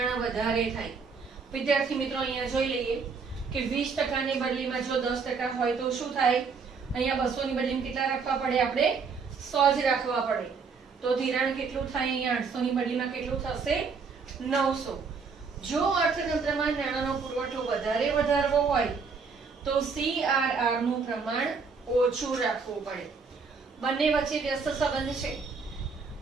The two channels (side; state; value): left; quieter; 5.1 dB